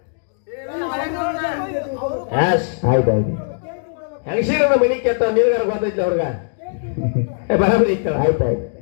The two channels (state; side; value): silent; right; digital silence